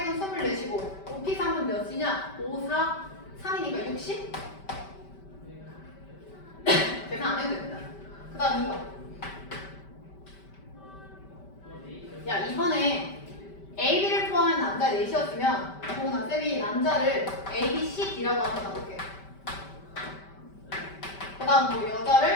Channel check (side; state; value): right; late; 5.1 ms